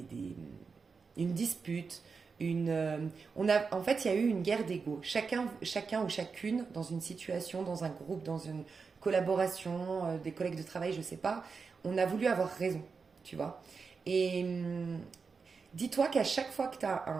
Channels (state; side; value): quieter; left; 5.1 dB